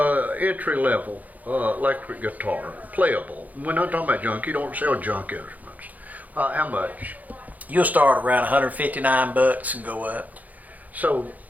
entry level electric guitar, playable. We're not talking about junk. You don't sell junk instruments. How much? You'll start around $159 and go up. So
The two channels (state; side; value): late; left; 0.079 ms